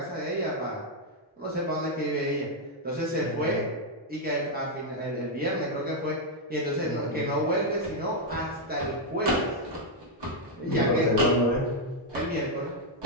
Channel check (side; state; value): both; normal; correlation -0.01